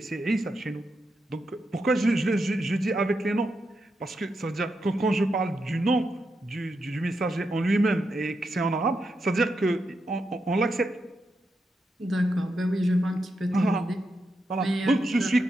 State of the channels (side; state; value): both; normal; correlation 0.85